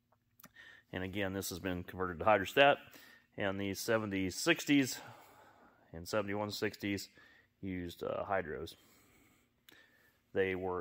And again, this has been converted to hydrostat. And the 7060s and 7160s used hydros. They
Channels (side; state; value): both; identical; correlation 1.00